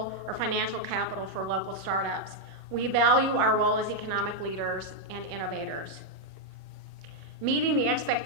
or financial capital for local startups, we value our role as economic leaders and innovators. Meeting the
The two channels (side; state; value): right; late; 1.0 ms